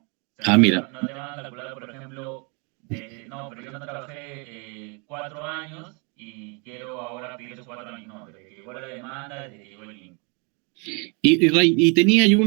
O sea, Ah, mira. no te van a calcular, por ejemplo, no, pero yo no trabajé 4 años y quiero ahora pedir esos 4 años. No, desde que llegó la demanda, desde que llegó el link. Ray, y tenía yo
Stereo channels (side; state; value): left; quieter; 33.6 dB